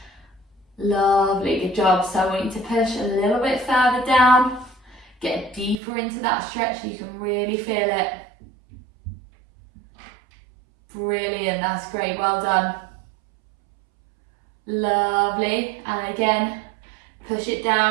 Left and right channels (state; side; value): drops out; left; at 5.8 s